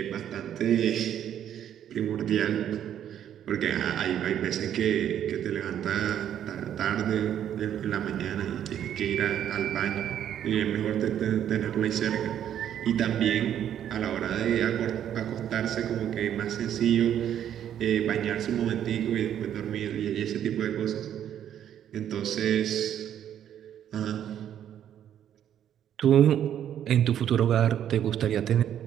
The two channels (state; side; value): quieter; left; 10.1 dB